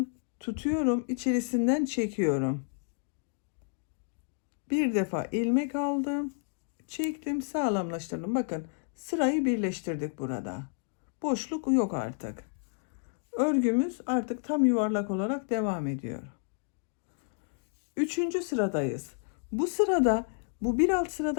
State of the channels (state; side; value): silent; right; 57 dB below the other